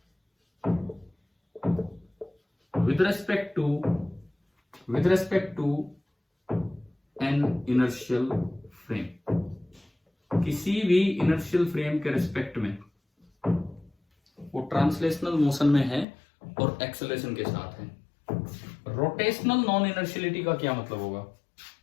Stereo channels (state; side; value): drops out; right; at 16.1 s